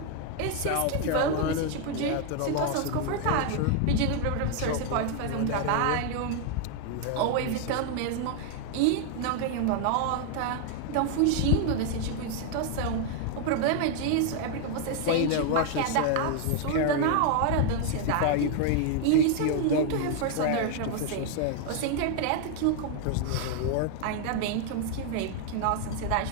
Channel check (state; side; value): different; both; correlation 0.00